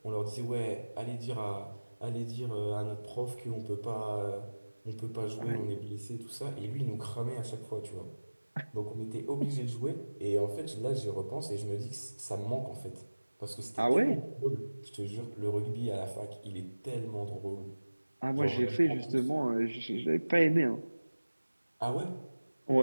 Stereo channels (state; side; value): inverted; both; correlation -1.00